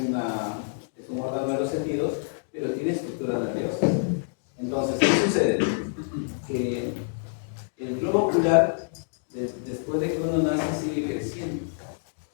un órgano de los sentidos, pero tiene estructura nerviosa. Entonces, ¿qué sucede? Que el globo ocular, después de que uno nace, sigue creciendo.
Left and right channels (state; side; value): silent; right; digital silence